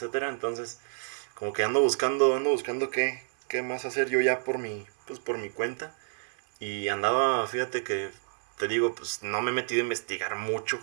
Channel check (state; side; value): silent; left; digital silence